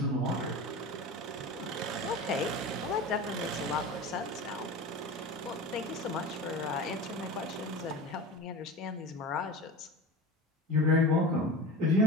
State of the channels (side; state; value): both; normal; correlation 0.31